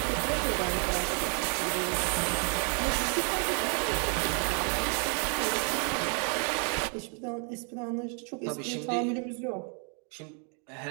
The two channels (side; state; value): left; quieter; 39.6 dB